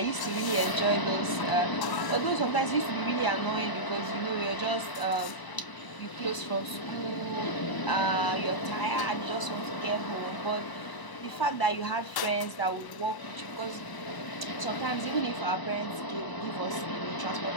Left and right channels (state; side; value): late; right; 1.0 ms